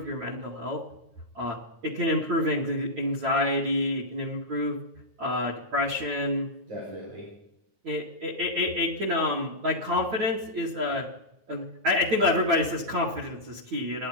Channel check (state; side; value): late; left; 9.3 ms